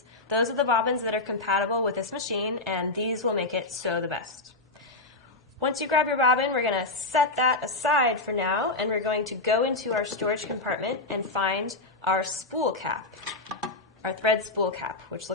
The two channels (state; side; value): quieter; right; 3.1 dB